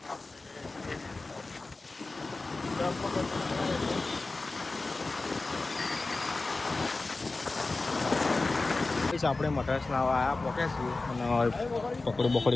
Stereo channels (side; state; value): right; quieter; 3.4 dB